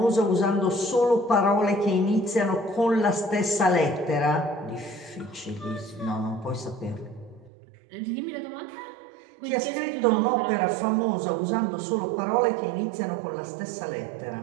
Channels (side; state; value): left; drops out; at 7.5 s